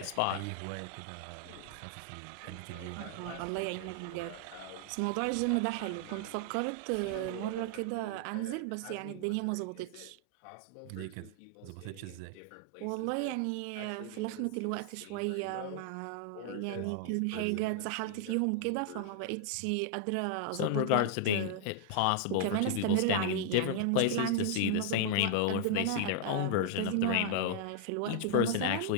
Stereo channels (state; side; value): different; both; correlation 0.00